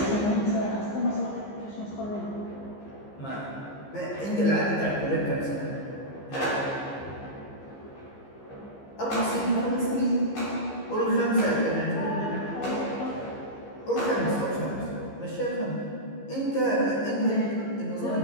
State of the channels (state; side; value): late; right; 15 ms